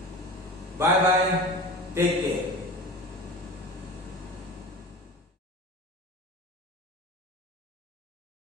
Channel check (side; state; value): both; normal; correlation 0.33